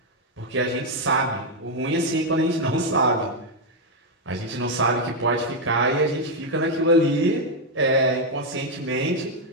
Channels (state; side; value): normal; both; correlation 0.01